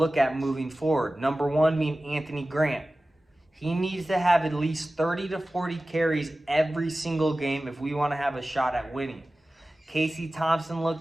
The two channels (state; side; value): normal; both; correlation 0.96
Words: at moving forward. Number one being Anthony Grant. He needs to have at least 30 to 40 carries every single game if we want to have a shot at winning. Casey Thompson